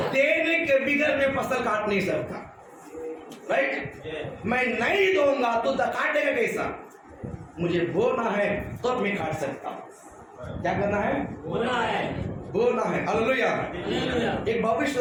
देने के बिगड़ में फसल काट नहीं सकता, राइट? मैं नहीं दूंगा तो काटेगा कैसा? मुझे बोना है तब मैं काट सकता हूं। क्या करना है? बोला है। बोलना है। हालेलुया। एक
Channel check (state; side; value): identical; both; correlation 1.00